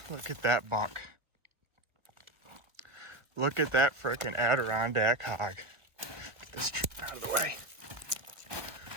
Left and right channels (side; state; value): left; late; 1.1 ms